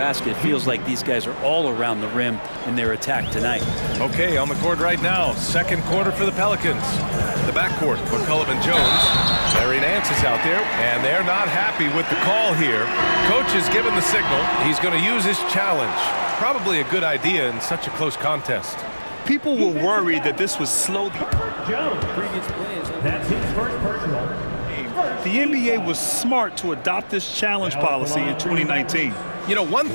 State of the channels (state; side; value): inverted; both; correlation -1.00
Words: It feels like these guys are all around the rim in their attack tonight. Okay, on the court right now, second quarter for the Pelicans. The backcourt, McCollum and Jones. Larry Nance is out there, and they're not happy with the call here. Coach has given the signal. He's going to use his challenge. Probably a good idea in such a close contest. People were worried that this was slow. Jones, that's his first personal. The NBA was smart to adopt this challenge policy in 2019. You know, one